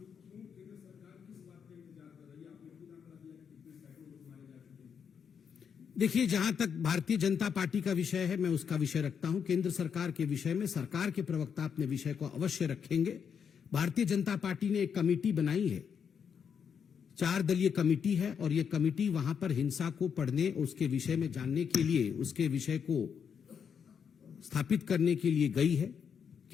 क्यों केंद्र सरकार किस बात का इंतजार कर रही है? आपने खुद आंकड़ा दिया कि कितने सैकड़ों लोग मारे जा चुके हैं। देखिए, जहां तक भारतीय जनता पार्टी का विषय है, मैं उसका विषय रखता हूं। केंद्र सरकार के विषय में सरकार के प्रवक्ता अपने विषय को अवश्य रखेंगे। भारतीय जनता पार्टी ने एक कमेटी बनाई है, 4 दलीय कमेटी है, और यह कमेटी वहां पर हिंसा को पढ़ने, उसके विषय में जानने के लिए, उसके विषय को स्थापित करने के लिए गई है।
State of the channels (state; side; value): quieter; right; 7.1 dB